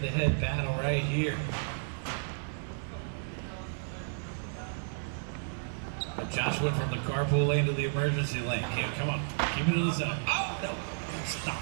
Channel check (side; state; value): left; silent; 56 dB below the other